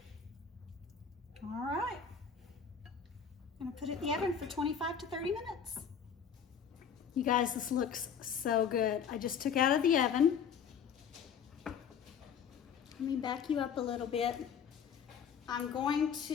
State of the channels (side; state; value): right; quieter; 7.3 dB